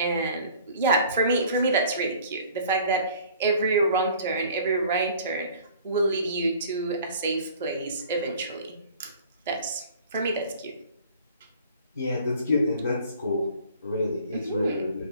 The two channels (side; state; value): both; inverted; correlation -0.49